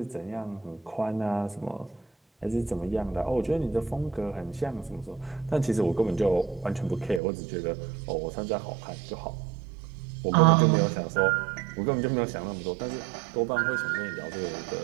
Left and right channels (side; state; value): left; drops out; at 7.2 s